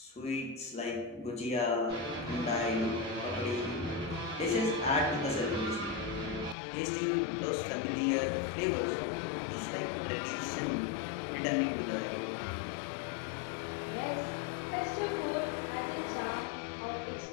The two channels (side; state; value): right; drops out; at 6.6 s